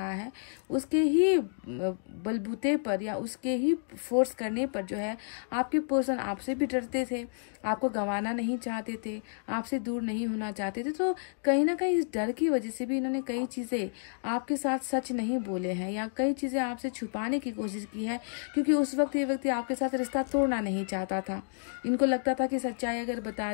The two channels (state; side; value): silent; right; digital silence